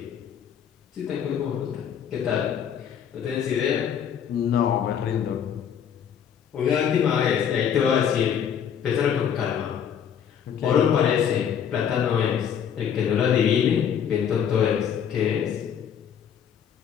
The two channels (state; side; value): quieter; right; 8.3 dB